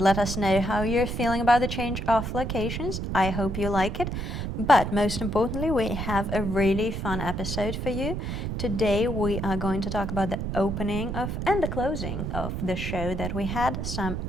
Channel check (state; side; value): noise; right; rumble, 4 dB below the sound